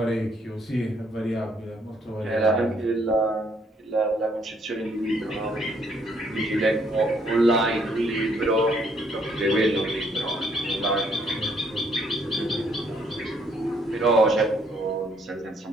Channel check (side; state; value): both; normal; correlation 0.68